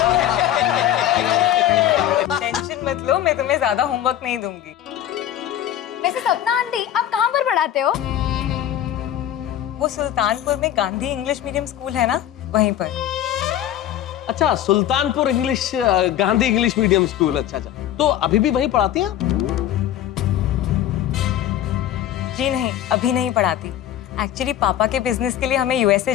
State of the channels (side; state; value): right; quieter; 11.6 dB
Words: टेंशन मत लो, मैं तुम्हें ज्यादा होमवर्क नहीं दूंगी। वैसे सपना आंटी आप कहाँ पर पढ़ाते हो? वो सुल्तानपुर में गांधी इंग्लिश मीडियम स्कूल है ना, वहीं पर। अच्छा Sultanpur English Gandhi English medium school. अच्छा अच्छा, तो अभी भी वहीं पढ़ाती हैं? जी नहीं, अभी नहीं पढ़ाती। एक्चुअली पापा के बिजनेस के लिए हमें यूएसए